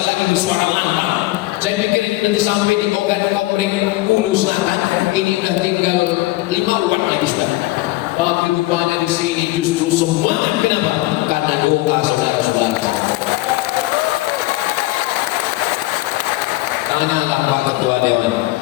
lagi bersuara lantang. Saya pikir ini nanti sampai di Ogan Komering Hulu Selatan. Ini udah tinggal 5 wattnya di sana. Tapi rupanya di sini justru semangat. Kenapa? Karena doa saudara-saudara. Tanyalah Pak Ketua Dewan,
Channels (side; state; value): right; quieter; 19.0 dB